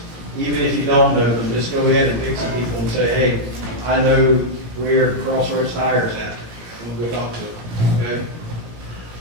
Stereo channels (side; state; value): left; late; 17 ms